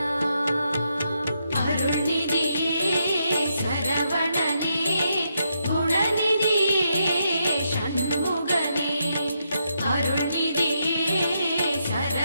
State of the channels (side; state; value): both; inverted; correlation -0.80